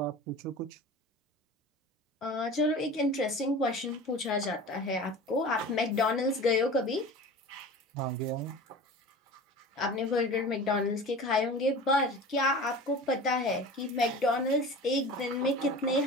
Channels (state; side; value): normal; both; correlation 0.36